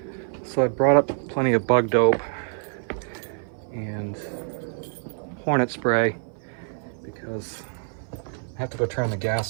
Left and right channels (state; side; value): silent; left; 57 dB below the other